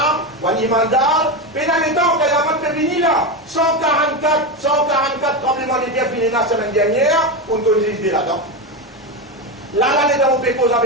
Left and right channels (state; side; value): normal; both; correlation 0.15